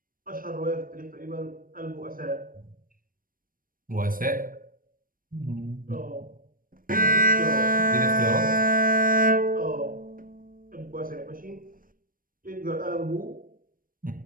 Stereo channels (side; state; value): left; late; 0.41 ms